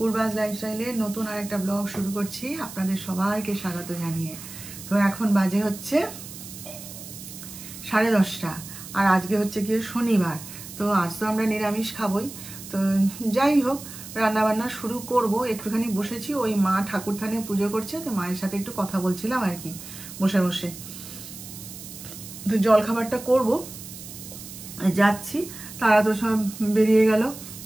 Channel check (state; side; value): noise; right; hiss, 13 dB below the sound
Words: পূর্বাস লাইফস্টাইলের নতুন আরেকটা ব্লগ শুরু করছি আপনাদের সবাইকে স্বাগত জানিয়ে। তো এখন বাজে হচ্ছে 10:30 আর আজকে হচ্ছে গিয়ে শনিবার। তো আজ তো আমরা নিরামিষ খাবই। তো যাই হোক, রান্না বান্না শুরু করব। একটুখানি বসেছি, ওই মা ঠাকুর থানে পুজো করছে, তো মায়ের সাথে একটু কথা বলছিলাম আর কি বসে বসে। তো জলখাবারটা করব, যাচ্ছি। তারা তো সব বেরিয়ে গেল।